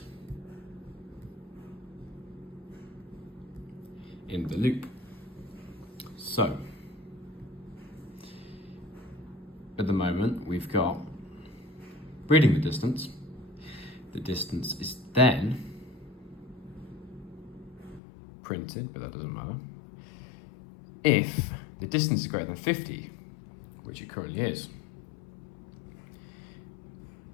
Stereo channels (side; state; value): right; drops out; at 18.0 s